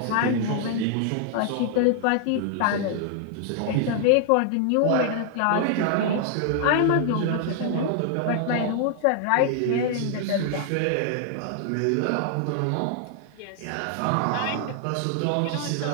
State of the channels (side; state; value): both; different; correlation 0.00